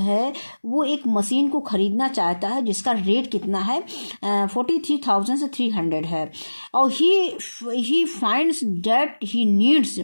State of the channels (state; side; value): inverted; both; correlation -1.00